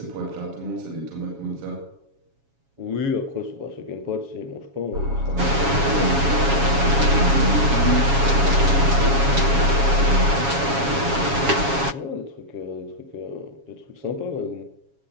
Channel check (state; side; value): late; left; 7.2 ms